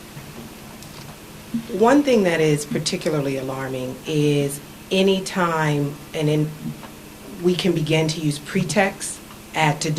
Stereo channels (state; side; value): identical; both; correlation 1.00